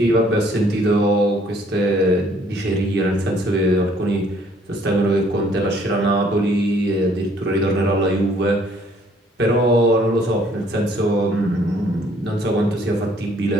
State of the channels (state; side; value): normal; both; correlation 0.61